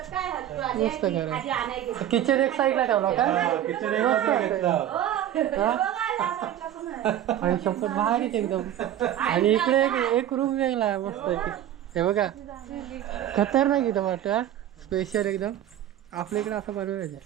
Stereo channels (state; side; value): quieter; left; 11.5 dB